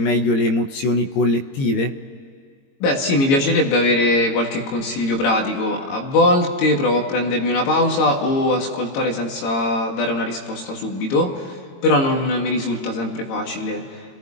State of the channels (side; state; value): right; late; 22 ms